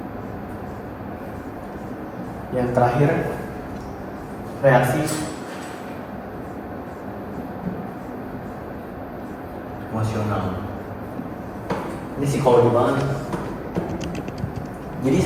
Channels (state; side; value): identical; both; correlation 1.00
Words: Yang terakhir reaksi emosional. Ini psikologi banget. Jadi